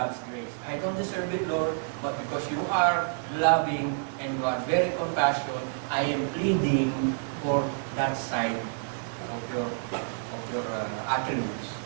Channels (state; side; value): silent; left; digital silence